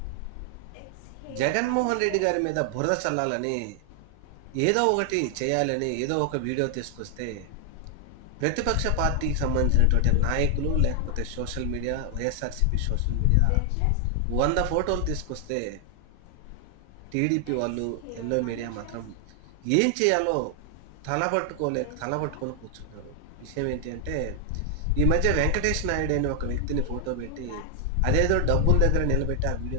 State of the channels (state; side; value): different; both; correlation 0.00